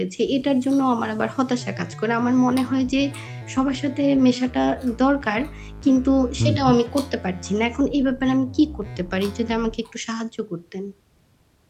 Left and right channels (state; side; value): identical; both; correlation 1.00